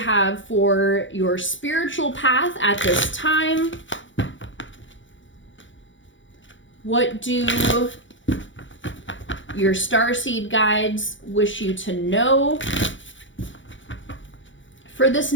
for your spiritual path at this time. What do your starseed guides wish you to know for this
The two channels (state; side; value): late; right; 0.55 ms